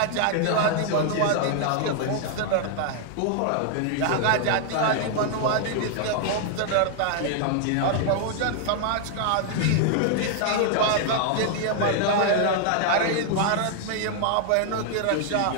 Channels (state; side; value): different; both; correlation 0.00